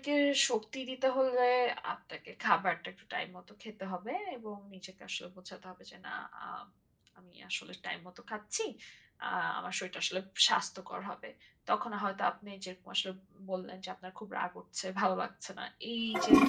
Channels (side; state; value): both; identical; correlation 1.00